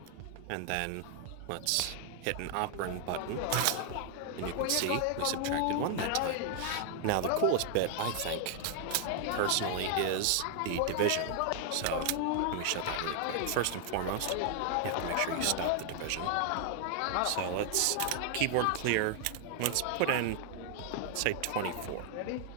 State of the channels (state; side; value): different; both; correlation 0.00